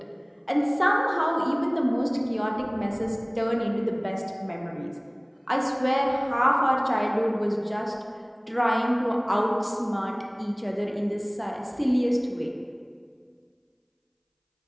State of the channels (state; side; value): identical; both; correlation 1.00